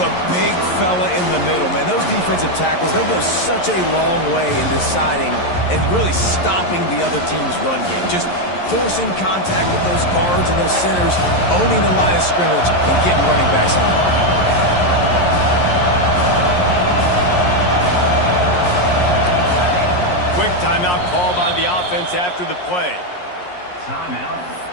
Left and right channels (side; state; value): right; late; 11 ms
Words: The big fella in the middle, man. Those defensive tackles, they go such a long way in deciding and really stopping the other team's run game. Just forcing contact with those guards and those centers, owning the line of scrimmage, and getting running backs on the ground. Quick timeout call by the offense after the play. Timeout,